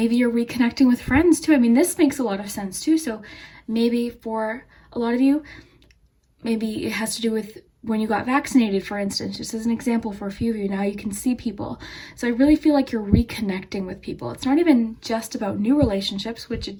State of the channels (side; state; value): both; identical; correlation 1.00